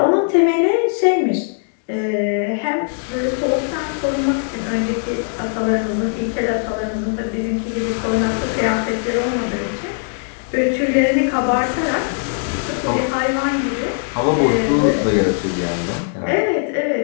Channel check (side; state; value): right; silent; 66 dB below the other